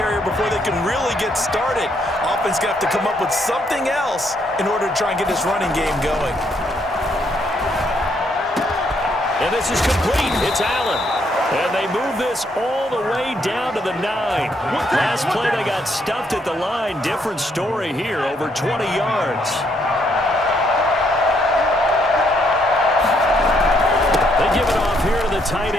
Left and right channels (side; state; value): both; normal; correlation 0.72